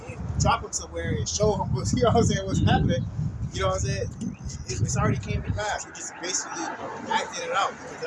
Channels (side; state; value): both; identical; correlation 1.00